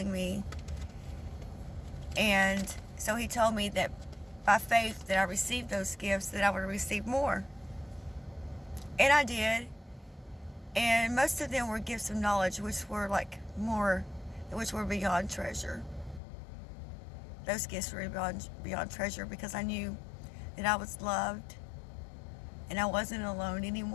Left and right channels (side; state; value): right; drops out; at 16.2 s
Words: me. And so he told me that by faith that I received those gifts, that I would receive more. And I did. And most of them were gifts of knowledge, which were which were beyond treasure. Those gifts were beyond treasure because I knew that I was loved and I wasn't alone